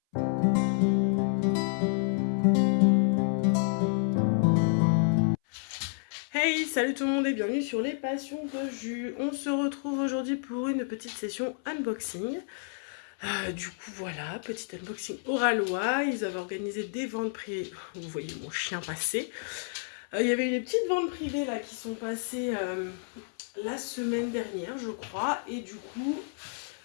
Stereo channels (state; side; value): silent; right; 58 dB below the other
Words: Hey, salut tout le monde et bienvenue sur les passions de jus. On se retrouve aujourd'hui pour une petite session unboxing. Du coup voilà, petit unboxing Oralois. Ils avaient organisé des ventes privées. Vous voyez mon chien passer. Il y avait eu des petites ventes privées là qui sont passées la semaine dernière je crois. Et du coup